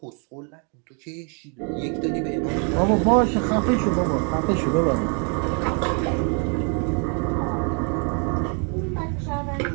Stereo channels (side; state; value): left; quieter; 38.0 dB